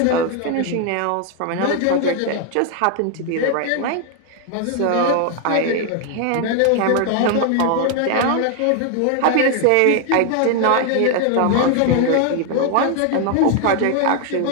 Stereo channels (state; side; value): different; both; correlation 0.01